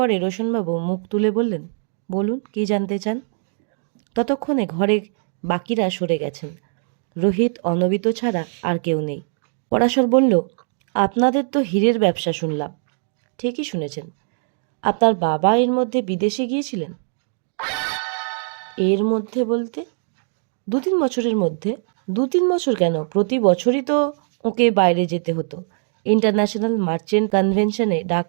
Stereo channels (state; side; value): silent; left; digital silence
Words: রোশনবাবু মুখ তুলে বললেন, বলুন, কি জানতে চান? ততক্ষণে ঘরে বাকিরা সরে গেছেন। রোহিত, অনবিত ছাড়া আর কেউ নেই। পরাশর বলল, আপনাদের তো হীরের ব্যবসা শুনলাম। ঠিকই শুনেছেন। আপনার বাবা এর মধ্যে বিদেশে গিয়েছিলেন? এর মধ্যে বলতে? 2-3 বছরের মধ্যে। 2-3 বছর কেন, প্রতি বছরই তো ওকে বাইরে যেতে হতো। ইন্টারন্যাশনাল মার্চেন্ট কনভেনশনে ডাক